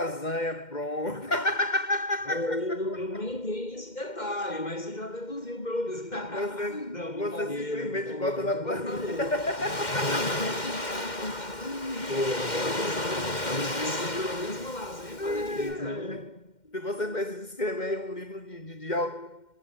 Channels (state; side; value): late; right; 2.1 ms